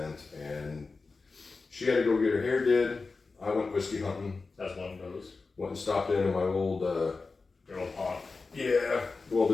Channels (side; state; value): right; quieter; 4.1 dB